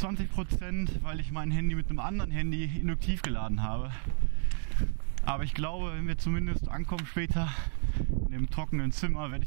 weil ich mein Handy mit einem anderen Handy induktiv geladen habe. Aber ich glaube, wenn wir zumindest ankommen später in dem trockenen Zimmer, werde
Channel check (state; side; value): silent; left; digital silence